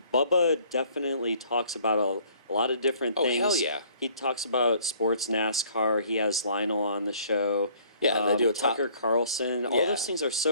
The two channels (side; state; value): both; inverted; correlation -0.59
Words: Bubba definitely talks about a lot of different things. Oh, hell yeah. He talks about sports, NASCAR. He has Lionel on the show. Yeah, they do a Tucker Carlson. All those things are